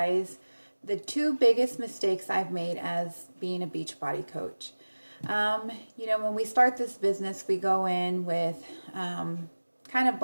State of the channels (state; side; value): inverted; both; correlation -1.00